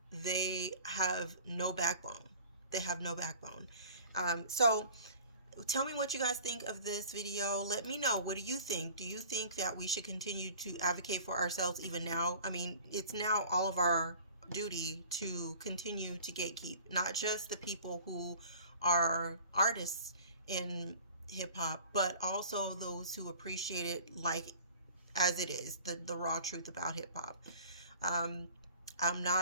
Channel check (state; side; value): inverted; both; correlation -0.45